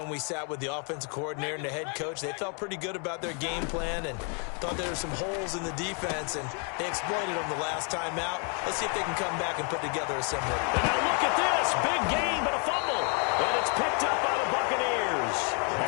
we sat with the offensive coordinator and the head coach. They felt pretty good about their game plan and thought there were some holes in the defense, and they exploited them the last time out. Let's see if they can come back and put together a similar. And now look at this. Big gain, but a fumble. And it's picked up by the Buccaneers.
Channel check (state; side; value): quieter; right; 39.1 dB